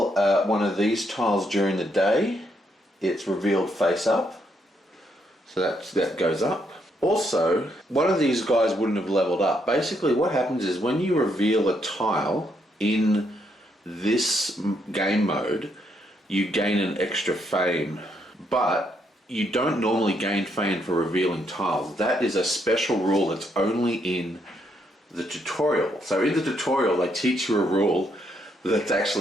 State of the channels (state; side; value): normal; both; correlation 0.75